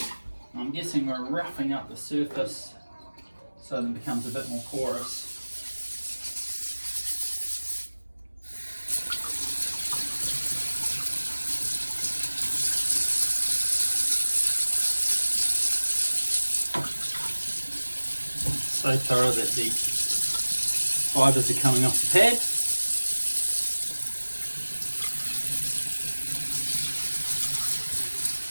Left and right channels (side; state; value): both; inverted; correlation -1.00